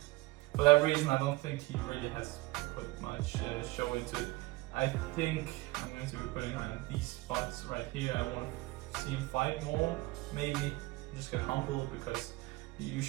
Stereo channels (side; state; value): left; quieter; 21.2 dB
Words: for that reason, I don't think he really has put much show into it. I think I'm going to be putting him in these spots right here. I want to see him fight more. Maybe just get humbled because you